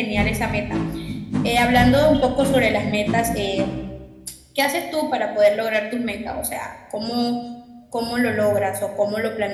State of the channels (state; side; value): identical; both; correlation 1.00